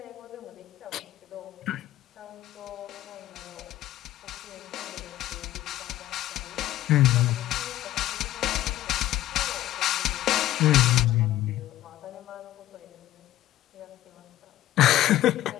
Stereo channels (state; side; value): quieter; right; 14.2 dB